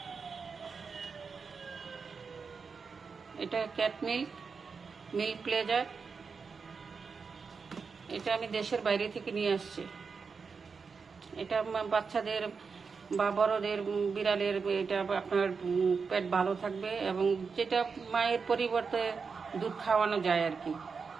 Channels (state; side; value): quieter; left; 5.3 dB